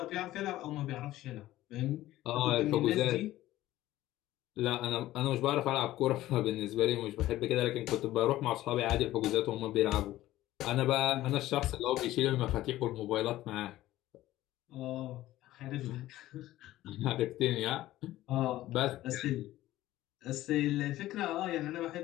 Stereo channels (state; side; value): quieter; right; 15.3 dB